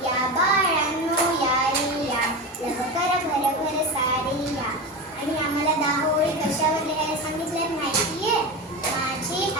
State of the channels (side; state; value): both; normal; correlation 0.23